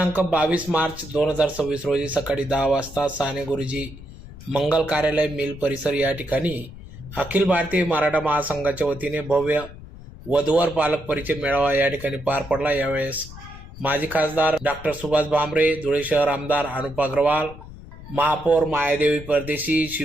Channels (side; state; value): left; noise; rumble, 15 dB below the sound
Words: 22 मार्च 2026 रोजी सकाळी 10 वाजता साने गुरुजी मंगल कार्यालय मिल परिसर या ठिकाणी अखिल भारतीय मराठा महासंघाच्या वतीने भव्य वधूवर पालक परिचय मेळावा या ठिकाणी पार पडला। यावेळेस माजी खासदार डॉक्टर सुभाष भामरे, धुळे शहर आमदार अनुप अग्रवाल, महापौर मायादेवी परदेशी,